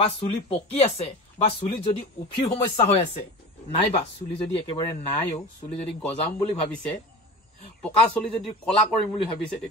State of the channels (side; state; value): both; normal; correlation 0.32